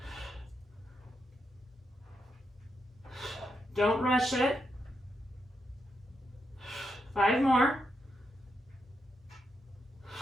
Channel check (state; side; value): normal; both; correlation 0.83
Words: Don't rush it. 5 more.